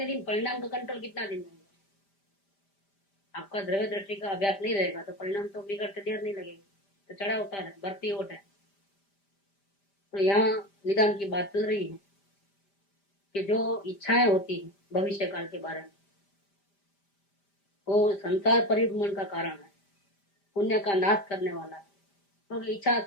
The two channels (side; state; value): right; late; 5.1 ms